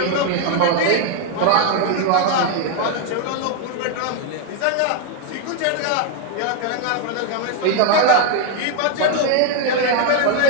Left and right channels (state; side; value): different; both; correlation 0.00